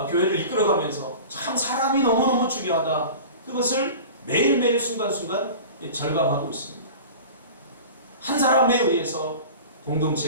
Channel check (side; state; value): both; inverted; correlation -0.36